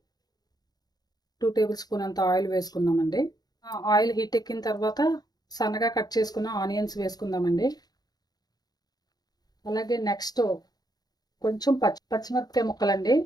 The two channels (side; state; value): right; late; 0.19 ms